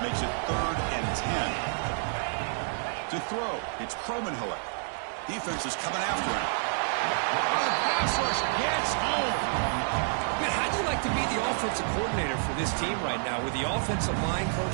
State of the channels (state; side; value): silent; left; digital silence